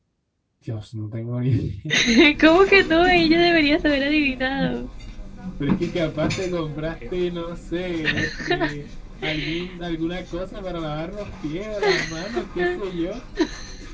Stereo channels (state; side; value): identical; both; correlation 1.00